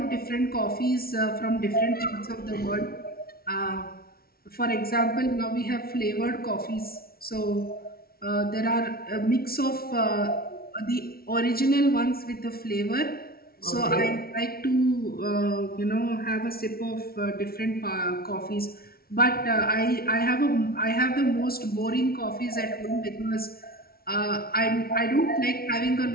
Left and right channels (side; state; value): right; late; 0.44 ms